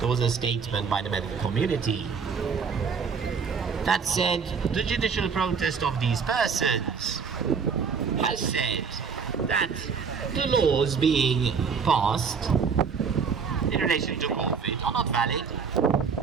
was a statement by the medical community that said the judicial protest of these persons has said that the laws being passed in relation to COVID are not valid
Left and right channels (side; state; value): left; quieter; 5.9 dB